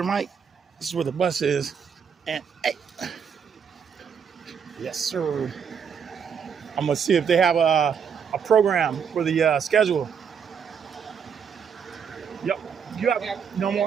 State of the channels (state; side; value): quieter; left; 7.0 dB